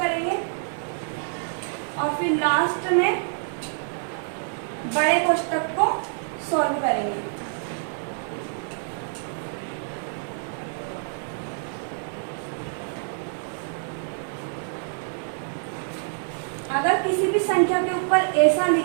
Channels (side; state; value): left; silent; digital silence